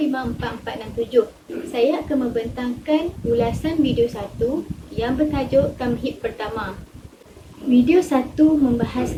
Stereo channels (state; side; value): identical; both; correlation 1.00